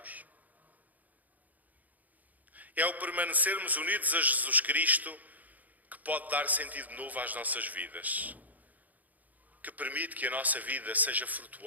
É o permanecermos unidos a Jesus Cristo que pode dar sentido novo às nossas vidas, que permite que a nossa vida seja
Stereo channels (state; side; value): late; left; 0.079 ms